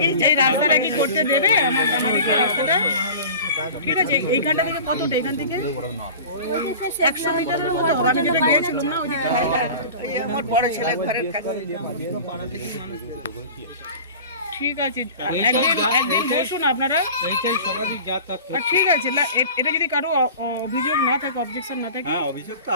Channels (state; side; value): inverted; both; correlation -0.38